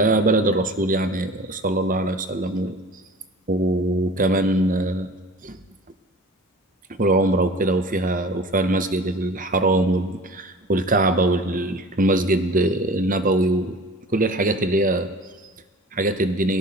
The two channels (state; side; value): normal; both; correlation 0.41